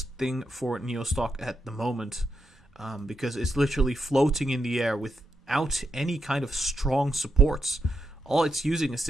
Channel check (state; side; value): normal; both; correlation 0.84